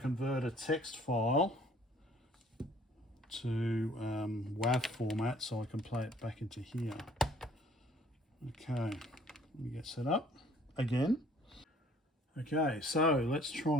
a text file to WAV format so I can play it back into here. Okay, let me get set up again. Okay, so let's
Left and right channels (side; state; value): both; normal; correlation 0.57